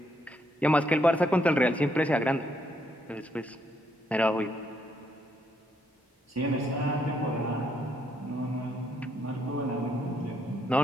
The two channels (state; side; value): normal; both; correlation 0.74